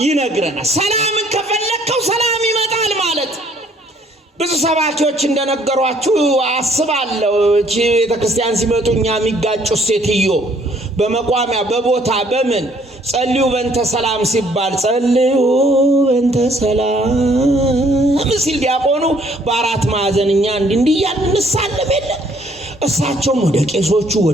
ይነግረናል። ሰላምን ከፈለከው ሰላም ይመጣል ማለት። ብዙ ሰባኪዎች እንደነገሯችሁ አስባለሁ። እቺ ቤተክርስቲያን ሲመጡ እኛ የሚጋጩ ሴትዮ በመቋሚያ በቦታ በምን ጸልዩ በእንተ ሰላም ሲባል ጸልዩ በእንተ ሰላም ሲል ዲያቆኑ በአራት ማዕዘን እኛ እንዲህ እያልን እንሳለም የለ። እሳቸውም ወደ ቄሶቹ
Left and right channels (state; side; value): normal; both; correlation 0.62